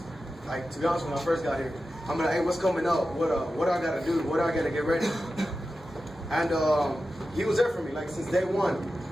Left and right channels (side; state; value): both; normal; correlation 0.92